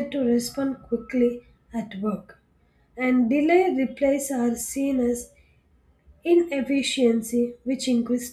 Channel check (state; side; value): identical; both; correlation 1.00